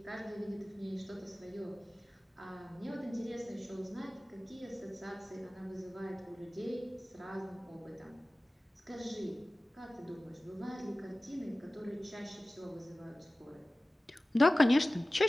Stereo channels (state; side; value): normal; both; correlation 0.96